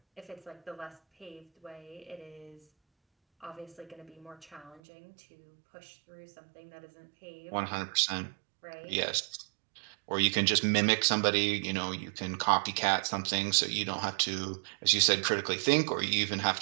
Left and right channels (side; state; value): left; drops out; at 4.8 s